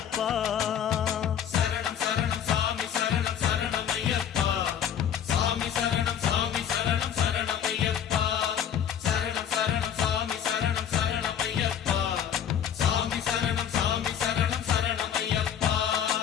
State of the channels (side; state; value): right; quieter; 9.0 dB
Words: சரணம் சரணம் சாமி சரணம் சரணம் ஐயப்பா சாமி சரணம் சாமி சரணம் சரணம் ஐயப்பா சரணம் சரணம் சாமி சரணம் சரணம் ஐயப்பா சாமி சரணம் சாமி சரணம் சரணம் ஐயப்பா